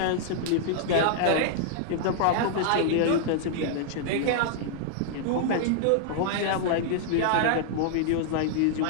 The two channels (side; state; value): both; different; correlation -0.01